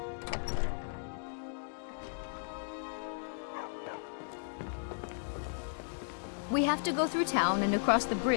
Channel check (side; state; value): right; silent; digital silence